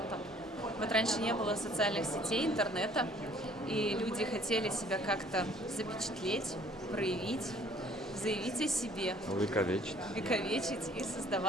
Вот раньше не было социальных сетей, интернета, и люди хотели себя как-то запечатлеть, проявить, заявить о себе. Вековечить. И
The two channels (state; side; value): normal; both; correlation 0.57